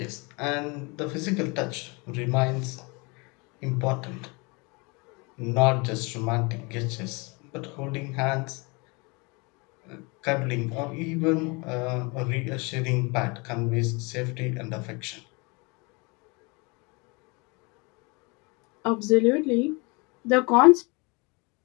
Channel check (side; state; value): right; quieter; 28.9 dB